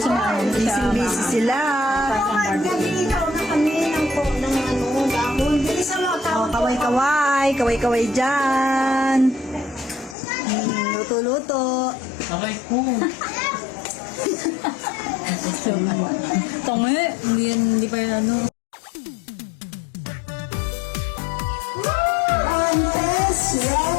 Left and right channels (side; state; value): right; drops out; at 10.2 s